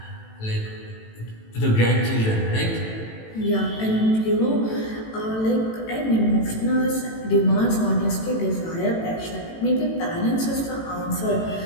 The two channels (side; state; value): right; late; 18 ms